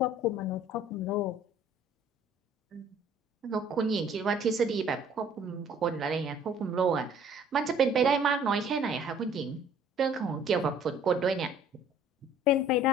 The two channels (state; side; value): normal; both; correlation 0.54